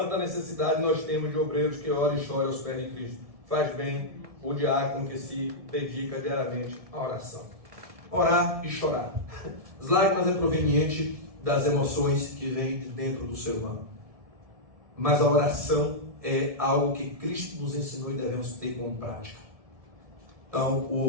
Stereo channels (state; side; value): late; left; 1.7 ms